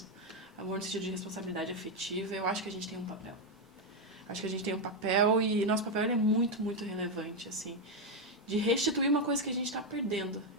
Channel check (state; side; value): normal; both; correlation 0.04